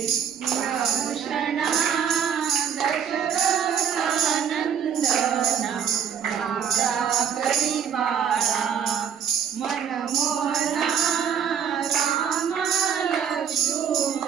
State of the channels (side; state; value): left; quieter; 7.7 dB